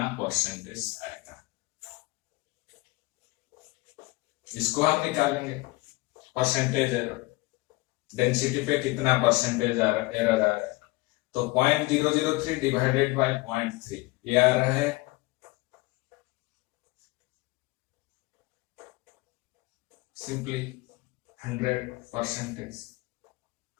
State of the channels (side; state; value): right; quieter; 22.6 dB